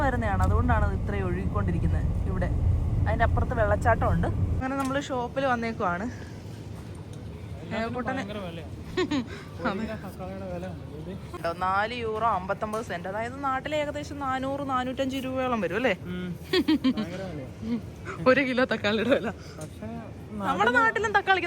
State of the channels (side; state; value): both; identical; correlation 1.00